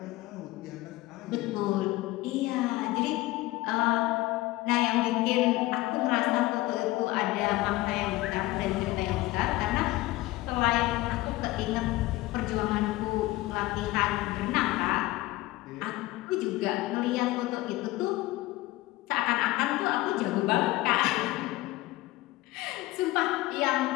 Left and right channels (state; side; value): quieter; right; 18.6 dB